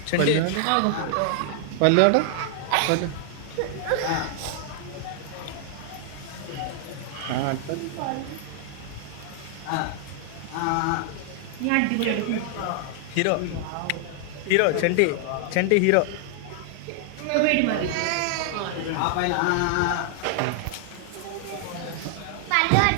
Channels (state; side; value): different; both; correlation 0.00